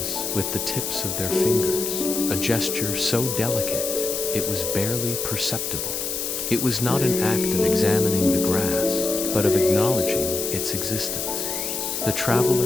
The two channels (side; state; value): left; noise; hiss, 3 dB below the sound